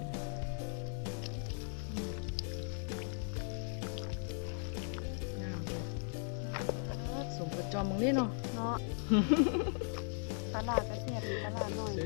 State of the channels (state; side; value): silent; right; 53 dB below the other